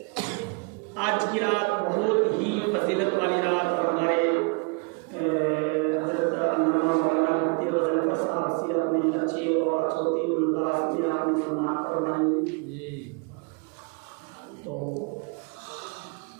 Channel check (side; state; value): left; quieter; 32.8 dB